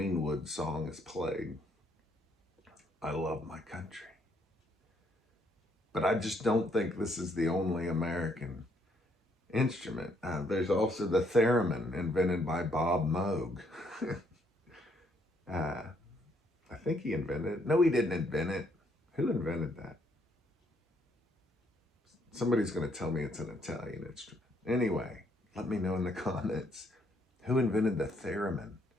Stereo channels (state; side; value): normal; both; correlation 0.70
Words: song is played. I love my country. But I just don't think this is the only American instrument. There's also the theremin, invented by Bob Moog. I think he invented it. No, he didn't invent it. Who invented that? Somebody's going to tell me it's an Italian instrument. Anyway, let me know in the comments. Who invented the theremin?